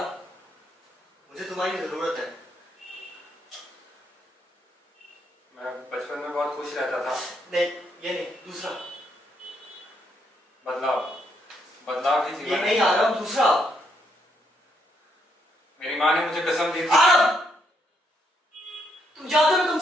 मुझे तुम्हारी जरूरत है। मैं बचपन में बहुत खुश रहता था। नहीं, ये नहीं, दूसरा। बदलाव बदलाव ही ये जीवन है। नहीं आरव, दूसरा। मेरी माँ ने मुझे कसम दी थी। आरव, तुम जानते हो मैं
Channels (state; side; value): normal; both; correlation 0.75